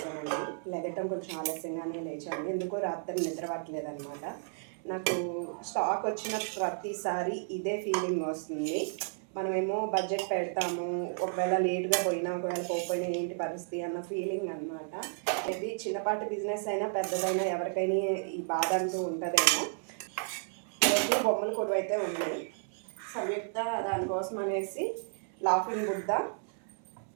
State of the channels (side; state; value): left; silent; 56 dB below the other